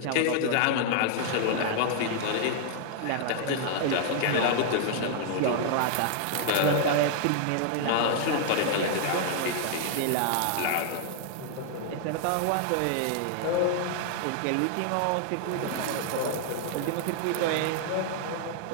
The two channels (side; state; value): both; different; correlation 0.00